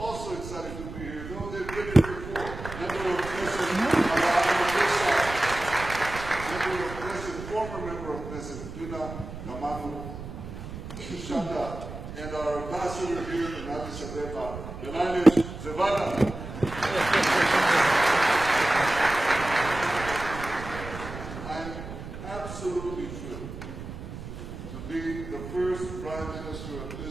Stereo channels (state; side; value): noise; right; rumble, 10 dB below the sound